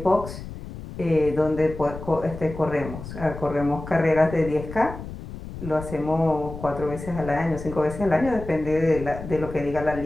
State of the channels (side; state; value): left; noise; rumble, 11 dB below the sound